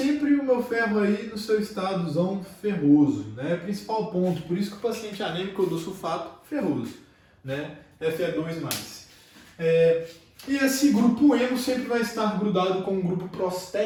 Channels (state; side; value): identical; both; correlation 1.00